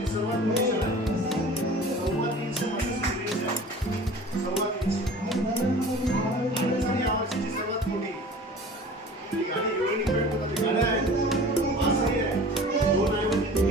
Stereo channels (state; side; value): normal; both; correlation 0.42